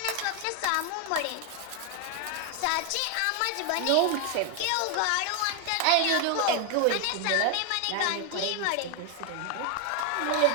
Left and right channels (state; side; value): different; both; correlation 0.01